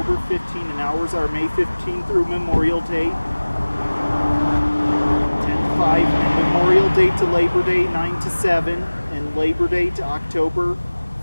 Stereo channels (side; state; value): both; inverted; correlation -1.00